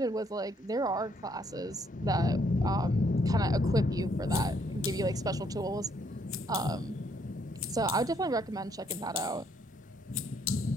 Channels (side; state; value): both; normal; correlation 0.69